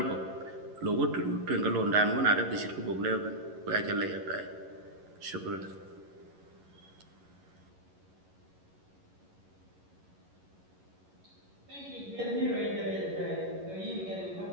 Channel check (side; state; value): left; late; 11 ms